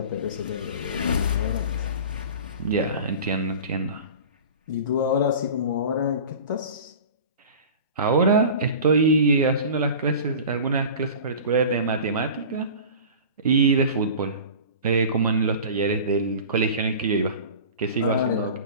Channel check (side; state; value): both; inverted; correlation -0.37